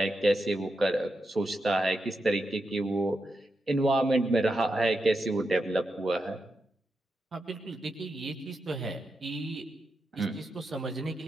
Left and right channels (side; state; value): both; normal; correlation 0.87